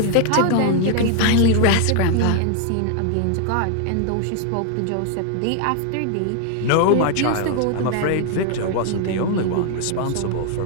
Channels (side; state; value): both; different; correlation 0.00